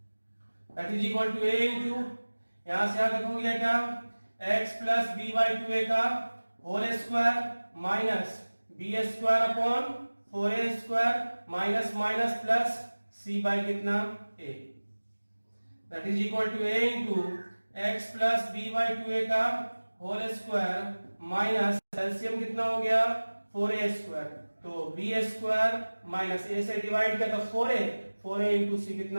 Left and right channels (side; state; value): both; inverted; correlation -1.00